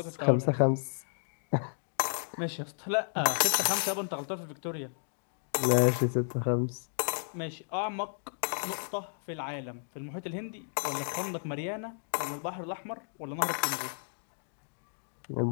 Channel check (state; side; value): silent; right; digital silence